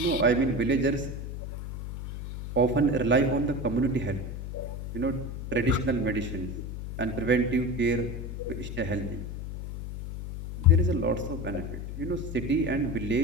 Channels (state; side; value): noise; left; hum, 7 dB below the sound